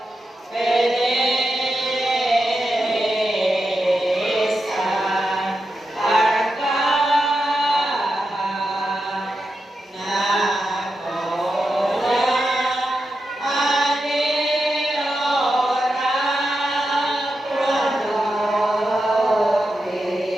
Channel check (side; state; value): both; normal; correlation 0.88